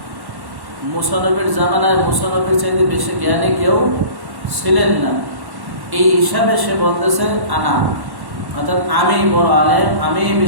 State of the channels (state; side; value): late; left; 1.1 ms